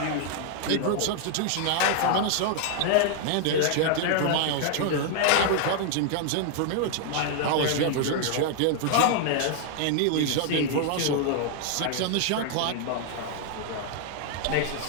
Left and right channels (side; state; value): both; different; correlation 0.00